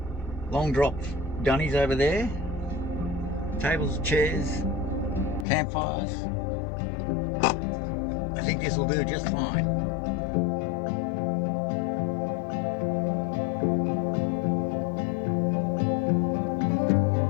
Long drop dunnies over there, tables, chairs, campfires. I think this will do just fine.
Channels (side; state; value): right; drops out; at 5.5 s